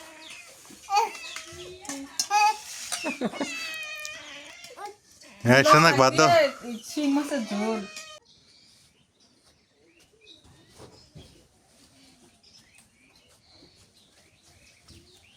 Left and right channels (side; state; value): both; identical; correlation 1.00